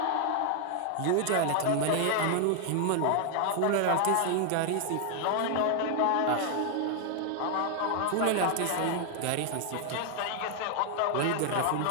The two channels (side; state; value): both; different; correlation 0.00